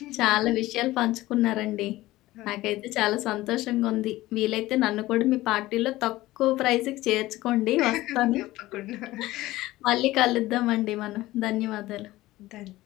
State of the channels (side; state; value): right; quieter; 17.4 dB